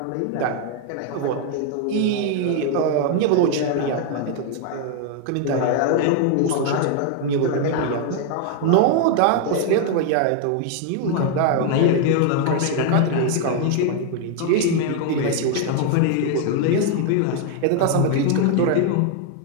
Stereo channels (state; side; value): different; both; correlation 0.00